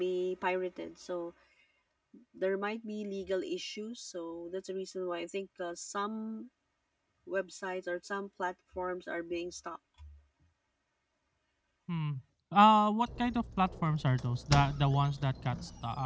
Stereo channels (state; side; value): identical; both; correlation 1.00